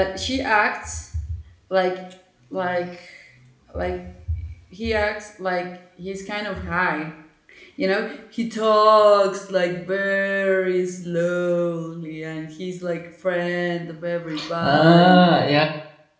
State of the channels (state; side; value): identical; both; correlation 1.00